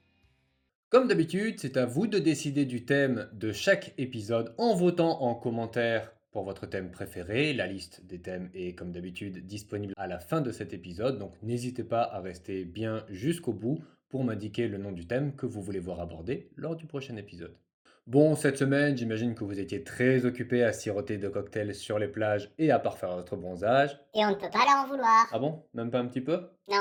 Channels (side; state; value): both; identical; correlation 1.00